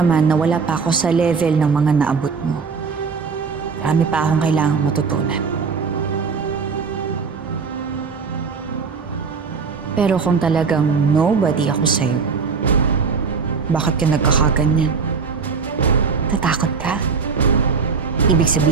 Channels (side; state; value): left; quieter; 5.3 dB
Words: na wala pa ako sa level ng mga naabot mo. Marami pa akong kailangang matutunan. Pero kung talagang nobody ako sa'yo, bakit ka nagkakaganyan? Tatakot ka? Ibig